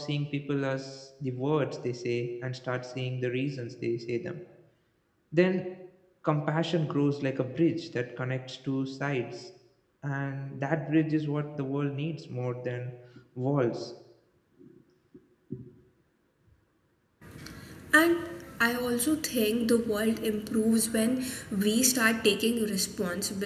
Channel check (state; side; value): identical; both; correlation 1.00